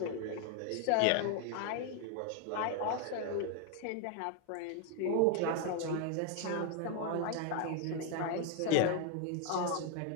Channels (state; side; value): different; both; correlation 0.01